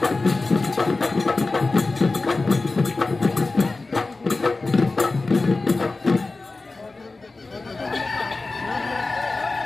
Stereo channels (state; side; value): quieter; right; 3.5 dB